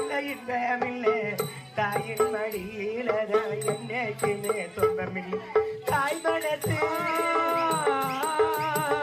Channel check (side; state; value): both; identical; correlation 1.00